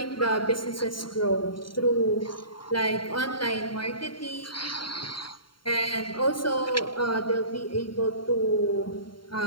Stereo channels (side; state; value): right; late; 0.73 ms